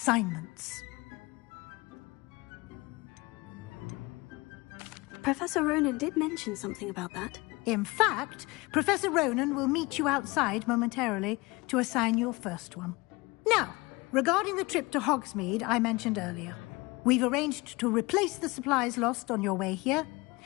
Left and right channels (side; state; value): right; quieter; 23.6 dB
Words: Professor Ronan did mention something about that. In fact, Professor Ronan will meet you outside momentarily to assign your first one. Now, regarding the trip to Hogsmeade I mentioned earlier, we've arranged to replace the supplies lost on your way here,